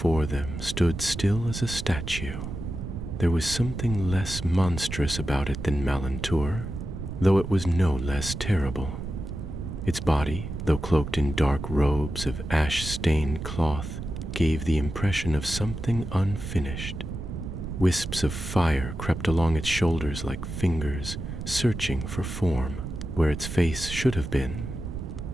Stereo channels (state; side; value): noise; right; rumble, 7 dB below the sound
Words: them stood still as a statue. There was something less monstrous about it than Malantur, though it was no less terrible. Its body, though cloaked in dark robes of ash-stained cloth, gave the impression of something unfinished. Wisps of fire crept along its shoulders like fingers, searching for form. Where its face should have been,